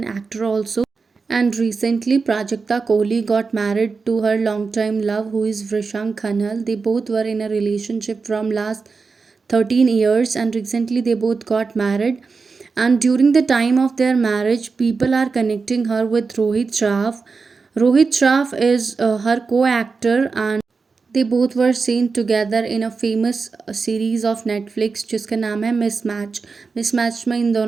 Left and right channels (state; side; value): quieter; left; 4.6 dB